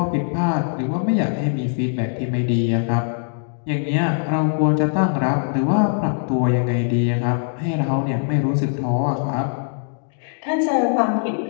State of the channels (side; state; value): right; silent; 61 dB below the other